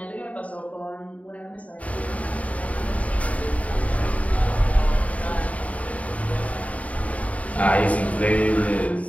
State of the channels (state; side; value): late; right; 0.068 ms